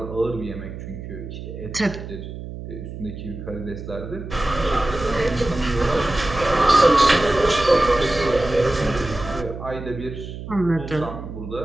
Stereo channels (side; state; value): right; noise; hum, 10 dB below the sound